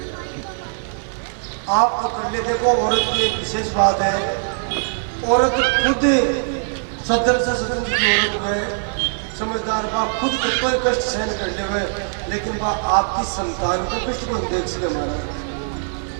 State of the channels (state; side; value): silent; left; 65 dB below the other